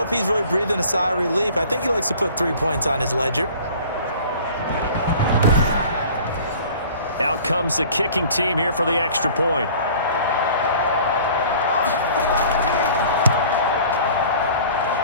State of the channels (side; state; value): both; inverted; correlation -0.47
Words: he's really breathing a sigh of relief. I think he likes to put 3 points on his ledger. Out comes the kicking team here for the extra point.